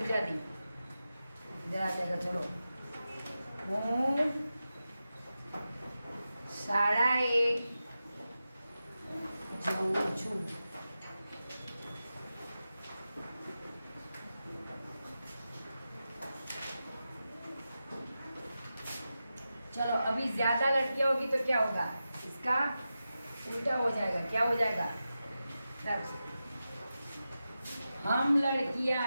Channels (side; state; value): both; inverted; correlation -0.92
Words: इधर आ जाएगा। चलो, हूँ शालाए जाऊँ छू, चलो अभी ज्यादा लड़कियां होगी तो क्या होगा, इसका उल्टा हो जाएगा। क्या हो जाएगा? हम लड़कियां